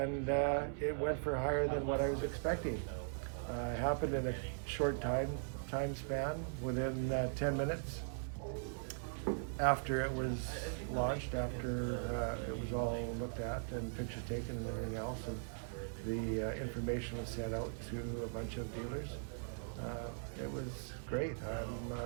it went for higher than what I was expecting. Happened in a short time span, within 10 minutes after it was launched, after it was all looked at and pictures taken and everything else, and the information was sent out to a bunch of dealers. It was great. I'm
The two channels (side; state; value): left; silent; 51 dB below the other